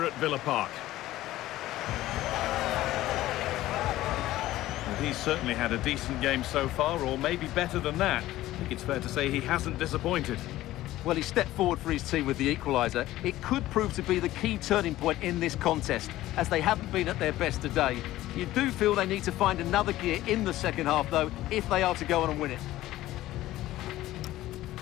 at Villa Park. Well, he's certainly had a decent game so far, or maybe better than that. I think it's fair to say he hasn't disappointed. Well, he stepped forward for his team with the equaliser. It could prove to be the key turning point in this contest, as they haven't been at their best today. You do feel they need to find another gear in the second half, though, if they are to go on and win it.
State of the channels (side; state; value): right; quieter; 15.5 dB